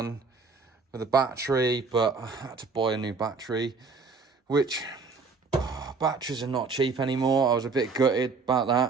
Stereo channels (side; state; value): left; quieter; 4.6 dB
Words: with the battery, but I had to buy a new battery, which batteries are not cheap anymore. I was a bit gutted about